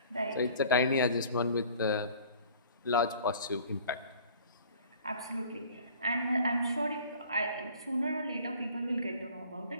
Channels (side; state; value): both; inverted; correlation -0.49